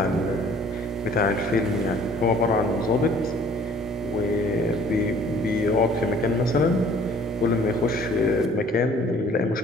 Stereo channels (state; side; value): normal; both; correlation 0.54